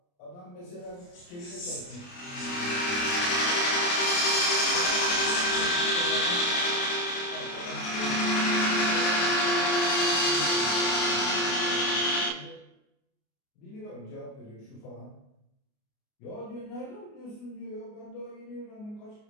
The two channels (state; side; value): late; right; 28 ms